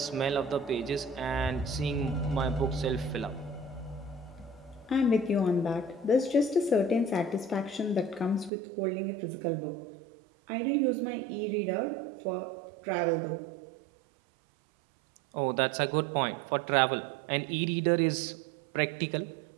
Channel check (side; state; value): left; drops out; at 8.5 s